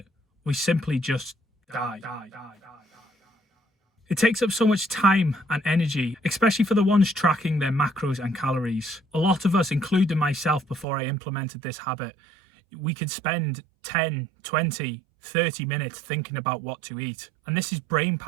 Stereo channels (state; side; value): drops out; left; at 10.9 s